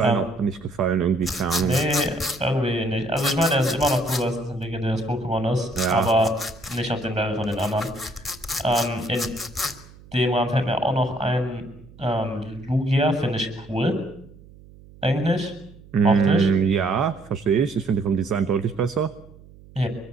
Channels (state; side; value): noise; right; hum, 22 dB below the sound